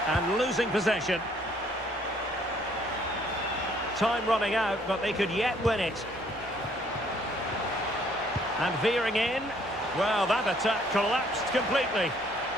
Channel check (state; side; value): normal; both; correlation 0.63